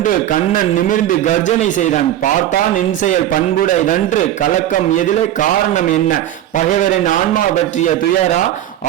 கண்ணன் நிமிர்ந்து கர்ஜனை செய்தான். பார்த்தான் என் செயல் பண்புடையதன்று, கலக்கம் எதிலே, காரணம் என்ன? பகைவரின் ஆன்மா பற்றிய துயரா,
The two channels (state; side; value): quieter; left; 12.3 dB